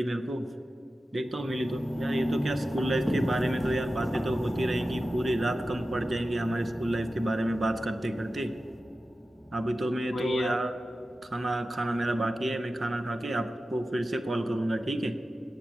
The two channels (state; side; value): normal; both; correlation 0.93